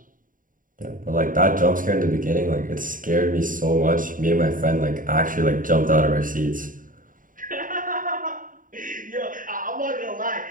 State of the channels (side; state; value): left; late; 0.39 ms